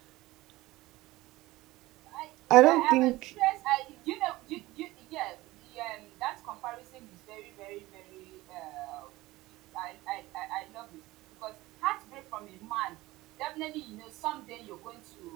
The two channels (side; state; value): left; quieter; 18.8 dB